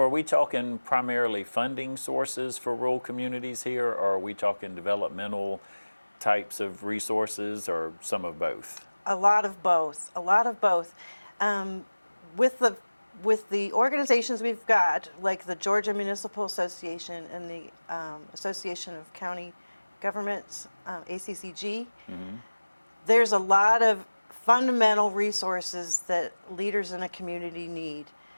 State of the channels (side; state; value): both; inverted; correlation -1.00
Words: are we talking primarily funding sources for rural communities here, or are we talking developmental types of resources, or some of both? A lot of both. With the with the organizations we've got, like the Georgia Municipal Association and the Association of County Governments, ACCG, there's a lot of fundamental resources that leaders in a community need.